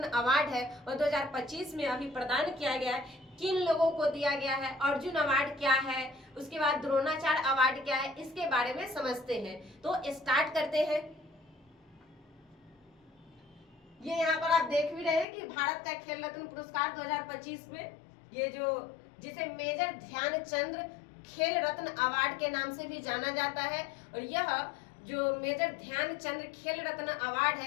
अवार्ड है वह 2025 में अभी प्रदान किया गया है, किन लोगों को दिया गया है, अर्जुन अवार्ड क्या है, उसके बाद द्रोणाचार्य अवार्ड क्या है, इसके बारे में समझते हैं। तो स्टार्ट करते हैं। ये यहाँ पर आप देख भी रहे हैं कि भारत का खेल रत्न पुरस्कार 2025 में ये जो जिसे मेजर ध्यानचंद खेल रत्न अवार्ड के नाम से भी जाना जाता है, और यह जो मेजर ध्यानचंद खेल रत्न अवार्ड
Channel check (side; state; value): right; drops out; at 15.2 s